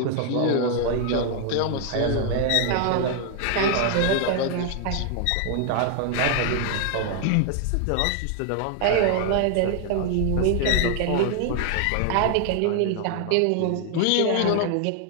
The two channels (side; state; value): both; different; correlation 0.00